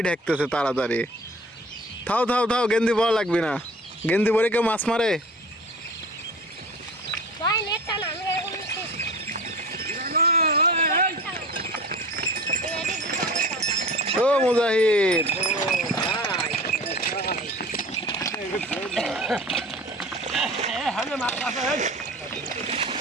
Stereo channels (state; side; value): normal; both; correlation 0.39